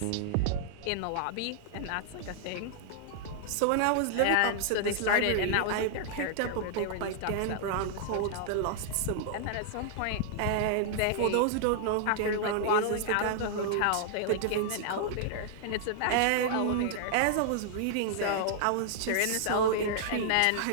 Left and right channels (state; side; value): different; both; correlation -0.01